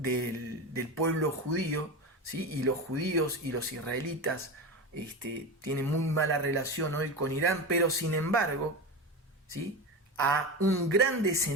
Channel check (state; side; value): normal; both; correlation 0.23